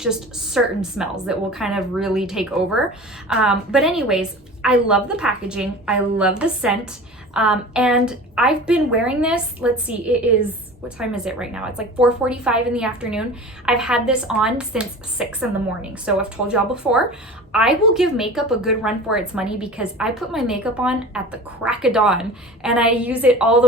certain smells that will kind of really take over. But anyways, I love the packaging. I love the scent. And I've been wearing this, let's see, it is, what time is it right now? It's like 4:45 in the afternoon. I've had this on since 6 in the morning. So I've told y'all before, I will give makeup a good run for its money because I put my makeup on at the crack of dawn and I use it all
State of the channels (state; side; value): normal; both; correlation 0.37